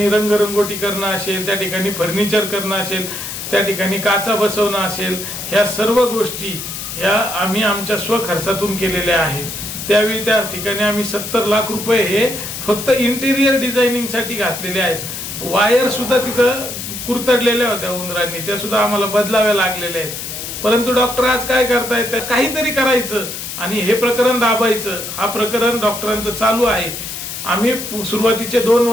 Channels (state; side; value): noise; left; hiss, 7 dB below the sound